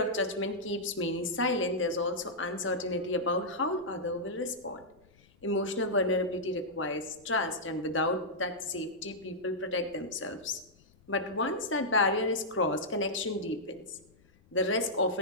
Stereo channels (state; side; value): noise; left; rumble, 29 dB below the sound